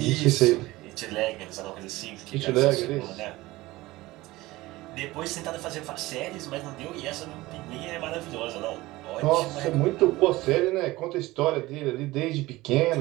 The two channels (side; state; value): left; quieter; 19.2 dB